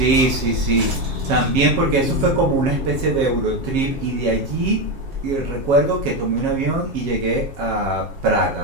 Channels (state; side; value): late; left; 7.4 ms